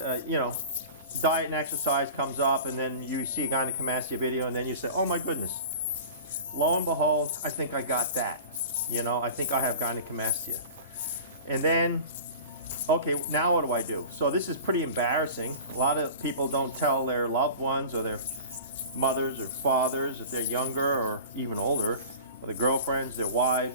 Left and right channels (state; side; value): inverted; both; correlation -0.37